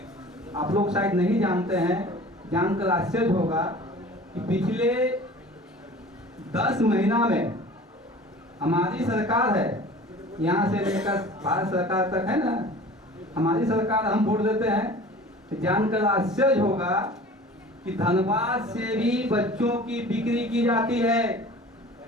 आप लोग शायद नहीं जानते हैं, जानकर आश्चर्य होगा कि पिछले 10 महीना में हमारी सरकार है, यहाँ से लेकर भारत सरकार तक है ना, हमारी सरकार, हम वोट देते हैं, जानकर आश्चर्य होगा कि धनबाद से भी बच्चों की बिक्री की जाती है,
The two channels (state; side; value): normal; both; correlation 0.43